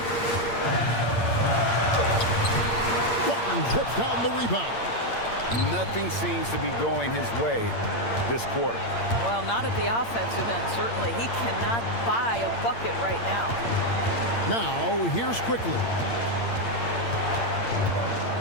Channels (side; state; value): right; late; 8.7 ms